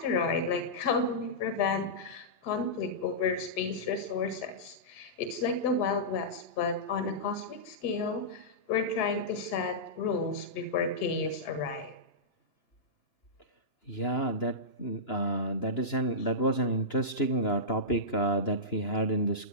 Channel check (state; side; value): late; right; 2.9 ms